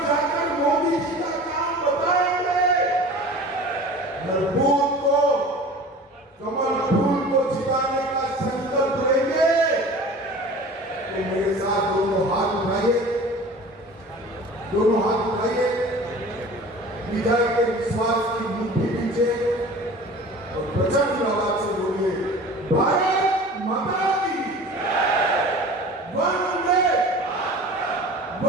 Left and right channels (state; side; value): normal; both; correlation 0.41